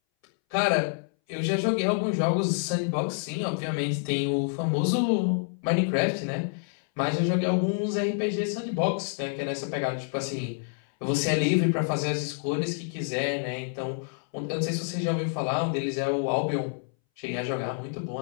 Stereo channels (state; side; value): silent; right; 60 dB below the other